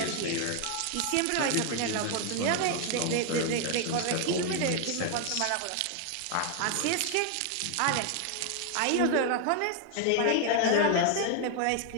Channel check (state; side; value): different; both; correlation 0.00